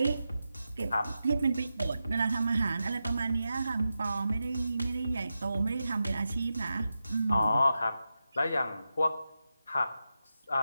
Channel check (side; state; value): both; inverted; correlation -0.90